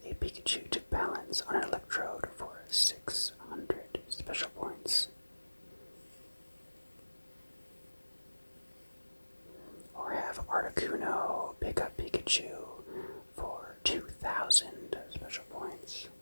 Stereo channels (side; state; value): both; inverted; correlation -1.00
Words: a Pikachu to balance on an electrode for 600 special points. Or have Articuno pick up Pikachu for 2,000 special points.